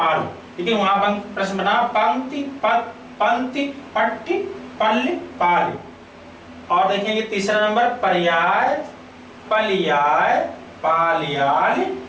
लेकिन वहां प्रश्न बना पंक्ति पंक्ति पट्टी पल्ले पाल। और देखेंगे तीसरा नंबर पर्याय पलियाय पालियाल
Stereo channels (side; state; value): both; identical; correlation 1.00